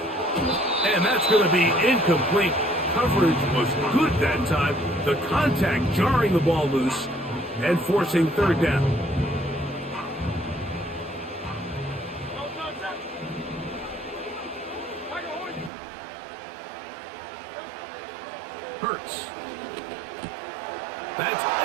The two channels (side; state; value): left; drops out; at 15.7 s